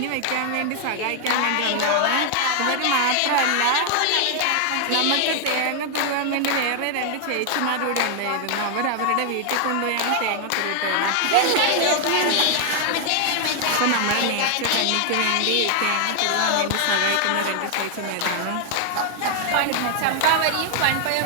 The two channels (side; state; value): both; different; correlation 0.00